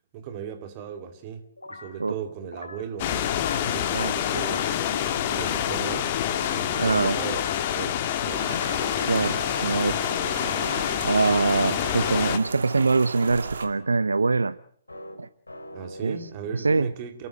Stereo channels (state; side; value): inverted; both; correlation -0.67